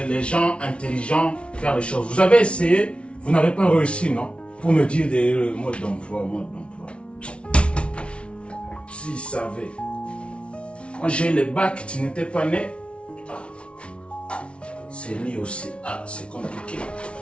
intelligents faire les choses. Vous avez essayé, vous n'avez pas réussi, non? Pour me dire des modes d'emploi, S'ils savaient. Moi, j'ai eu le bac, tu n'étais pas né. C'est lui aussi. Ah, c'est compliqué.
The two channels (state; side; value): late; right; 0.059 ms